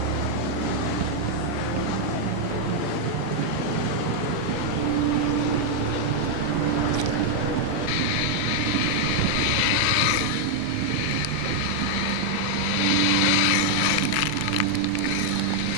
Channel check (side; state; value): both; different; correlation 0.00